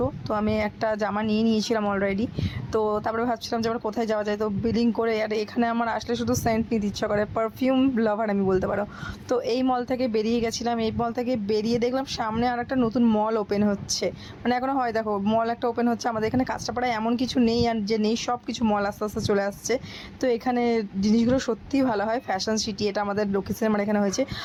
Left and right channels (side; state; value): both; identical; correlation 1.00